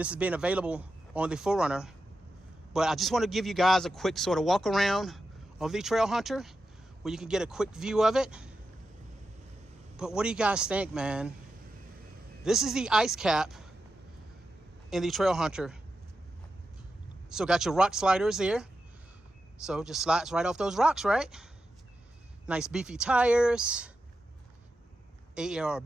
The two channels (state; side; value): normal; both; correlation 0.89